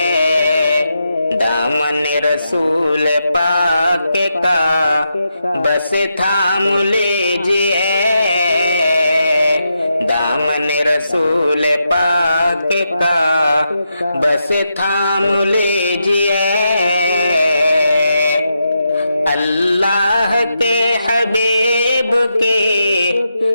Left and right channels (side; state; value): both; inverted; correlation -0.84